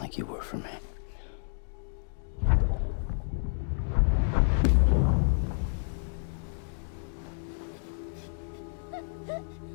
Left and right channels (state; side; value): silent; right; digital silence